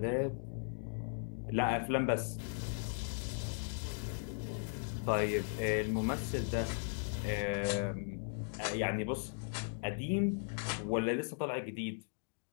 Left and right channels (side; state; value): right; silent; digital silence